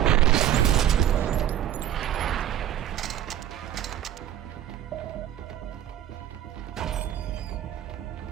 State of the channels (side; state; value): left; quieter; 11.3 dB